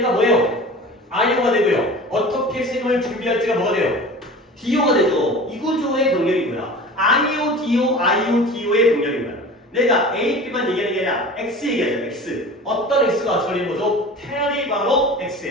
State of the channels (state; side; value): normal; both; correlation 0.38